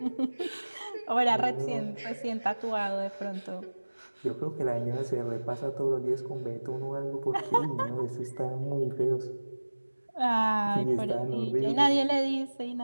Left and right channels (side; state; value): both; inverted; correlation -1.00